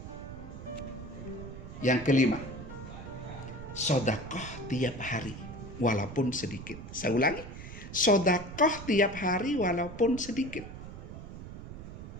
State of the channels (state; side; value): noise; right; rumble, 11 dB below the sound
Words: Yang kelima, sedekah tiap hari walaupun sedikit. Saya ulangi, sedekah tiap hari walaupun sedikit.